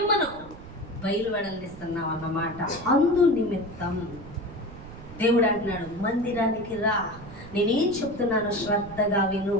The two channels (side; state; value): right; noise; rumble, 16 dB below the sound